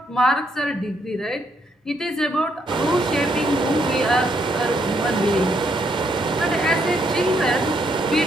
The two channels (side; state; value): both; normal; correlation 0.74